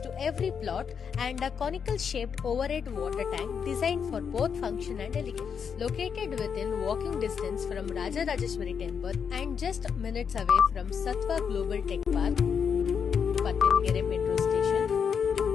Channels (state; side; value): quieter; right; 6.8 dB